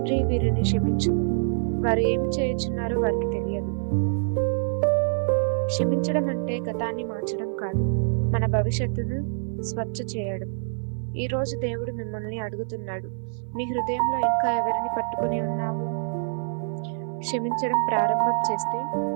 వీరిని క్షమించు, వారు ఏమి చేయుచున్నారో వారికి తెలియదు. క్షమించడం అంటే గతాన్ని మార్చడం కాదు, మన భవిష్యత్తును స్వచ్ఛ చేయడం. ఈ రోజు దేవుడు మిమ్మల్ని అడుగుతున్నాడు, మీ హృదయంలో ఇంకా ఎవరిని పట్టుకుని ఉన్నావు? క్షమించడం ప్రారంభం చేస్తే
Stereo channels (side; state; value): left; silent; 59 dB below the other